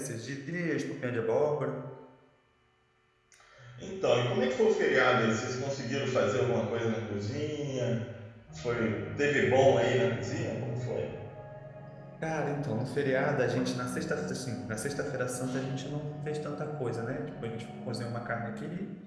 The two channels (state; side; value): identical; both; correlation 1.00